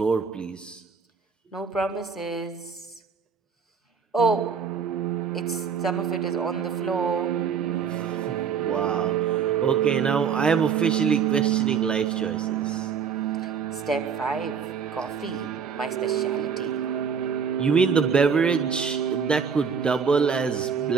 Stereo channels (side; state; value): left; quieter; 6.5 dB